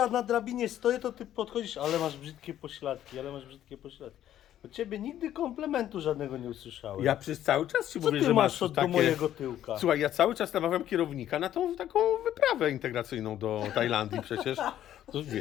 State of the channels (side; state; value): right; quieter; 11.7 dB